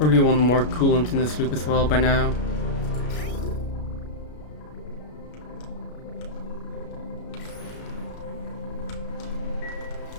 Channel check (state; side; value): late; right; 33 ms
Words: want more coolant in this loop as well by now.